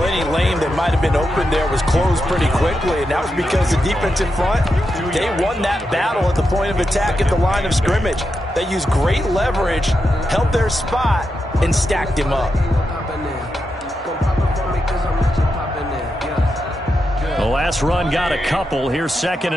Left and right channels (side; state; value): both; normal; correlation 0.86